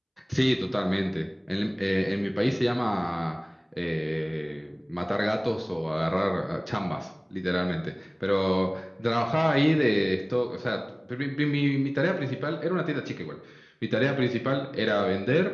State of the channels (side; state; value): both; identical; correlation 1.00